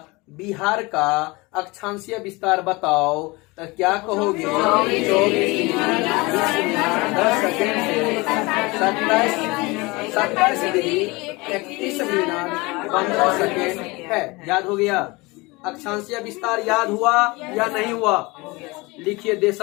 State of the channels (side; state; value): right; quieter; 24.0 dB